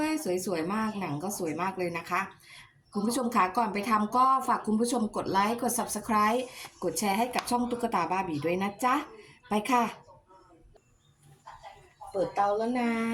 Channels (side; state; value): both; identical; correlation 1.00